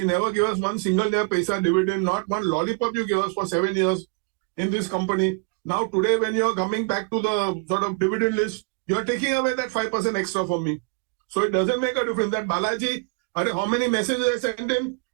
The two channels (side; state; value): left; quieter; 31.2 dB